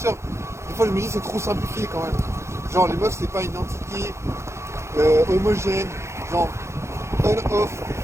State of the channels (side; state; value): left; late; 0.13 ms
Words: des fois je me dis c'est trop simplifié quand même. Genre les meufs c'est pas une entité homogène, genre on-off,